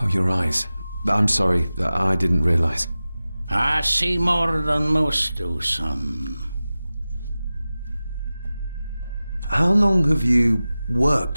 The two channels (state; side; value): inverted; both; correlation -0.96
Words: Oh, your eyes. I'm sorry, I didn't realize. I see more than most do, son. How long have you worked